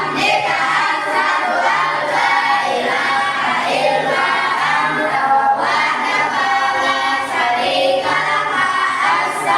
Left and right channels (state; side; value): identical; both; correlation 1.00